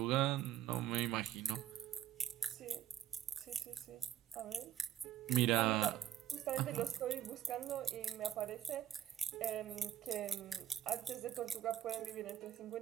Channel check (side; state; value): left; quieter; 11.1 dB